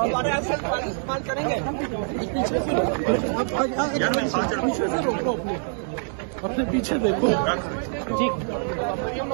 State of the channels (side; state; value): left; silent; digital silence